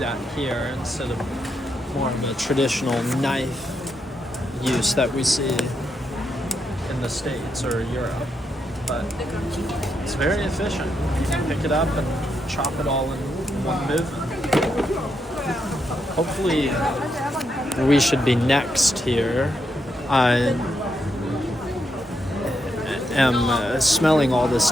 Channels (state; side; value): normal; both; correlation 0.81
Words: here instead of more of a traditional knife use that we see in the States or Europe. But it's very efficient. You can pick it up and chop it all in one movement. Hopefully we should be next here. I am smelling all this